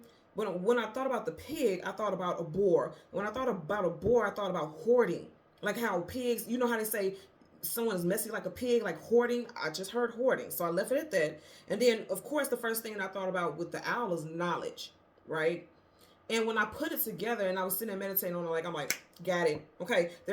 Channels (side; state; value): both; identical; correlation 1.00